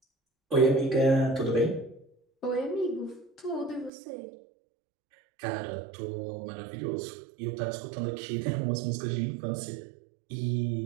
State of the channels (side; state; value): left; drops out; at 3.9 s